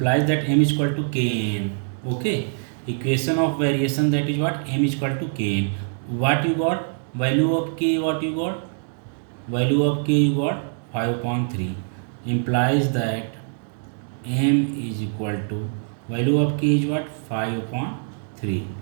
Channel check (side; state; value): left; silent; digital silence